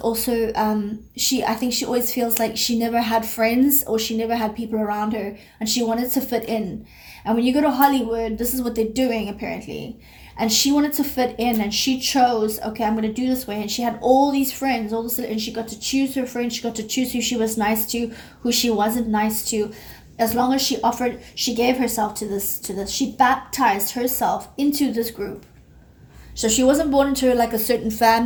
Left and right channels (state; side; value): identical; both; correlation 1.00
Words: I think she always feels like she never had friends, or she never had people around her, and she wanted to fit in. And when you go to Hollywood, this is what they're doing, apparently. And she wanted to fit in, and she chose, okay, I'm going to do this way. And she had all these friends, and she got to choose her friends. She got to choose who she was nice to, who she wasn't nice to. As long as she gave herself to this. She baptized herself into this group. So she wasn't born into like a certain